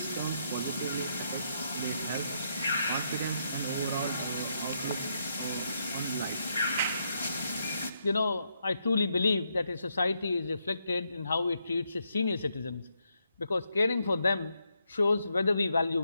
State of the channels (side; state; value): both; inverted; correlation -0.79